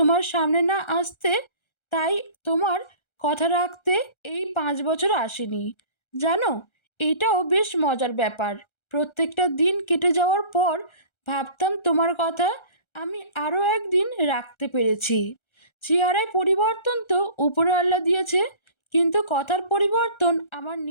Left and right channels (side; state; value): right; late; 1.3 ms